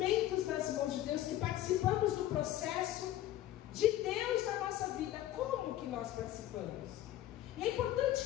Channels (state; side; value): quieter; right; 13.6 dB